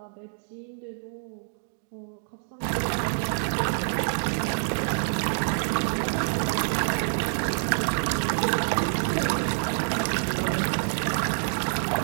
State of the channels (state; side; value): silent; left; digital silence